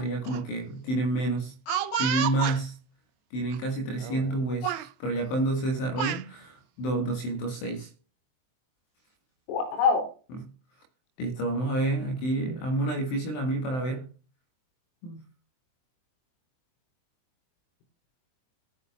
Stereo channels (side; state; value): right; late; 23 ms